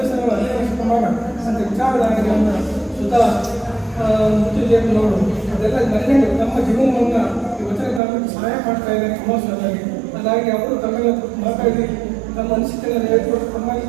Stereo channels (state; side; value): drops out; left; at 8.0 s